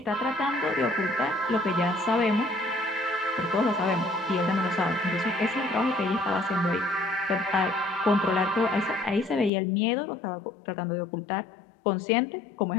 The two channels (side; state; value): right; drops out; at 9.5 s